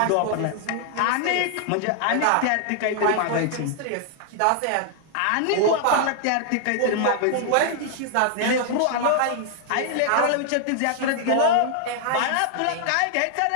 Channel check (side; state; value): both; different; correlation 0.00